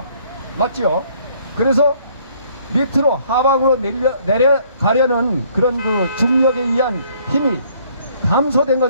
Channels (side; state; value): both; inverted; correlation -0.62